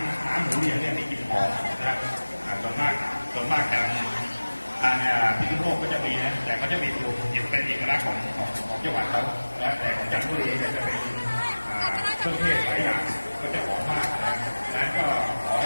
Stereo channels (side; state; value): both; inverted; correlation -1.00